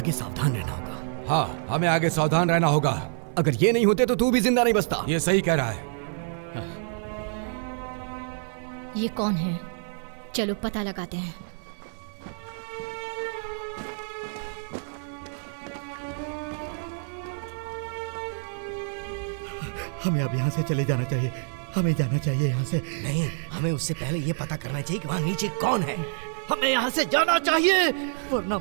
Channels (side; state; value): left; silent; 55 dB below the other